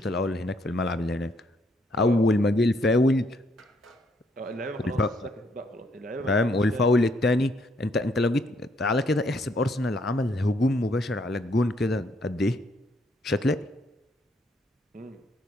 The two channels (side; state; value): both; normal; correlation 0.70